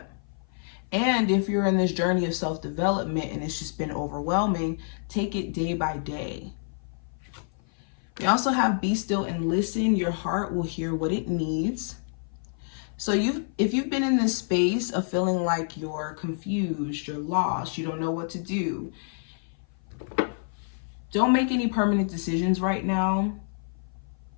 And if you're in this journey of self-development and it's just been overwhelming, take it day by day. We also have be still and listen. Your heart will hear what it needs. So if you've been in this space of feeling like you're confused, you're lost, you don't know what to do, don't make any permanent decisions right now.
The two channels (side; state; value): right; silent; 56 dB below the other